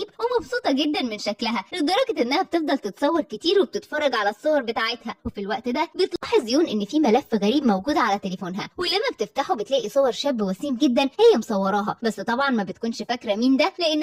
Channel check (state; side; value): identical; both; correlation 1.00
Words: ومبسوطة جدا من شكلها، لدرجة انها بتفضل تتصور كتير وبتتفرج على الصور بتاعتها. وفي الوقت ده بتلاحظ يون ان في ملف غريب موجود على تليفونها، ولما بتفتحه بتلاقي صور شاب وسيم جدا هي مصوراها، بس طبعا ما بتكونش فاكرة مين ده